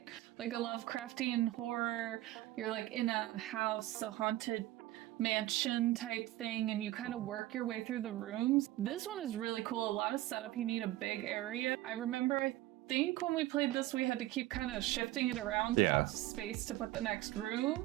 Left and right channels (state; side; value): quieter; left; 16.1 dB